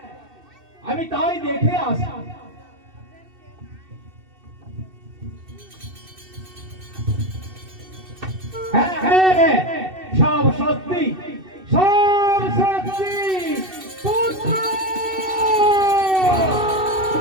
আমি তাই দেখে আসি। হ্যাঁ হ্যাঁ, সব সত্যি, সব সত্যি। পুত্র,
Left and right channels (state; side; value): late; left; 2.7 ms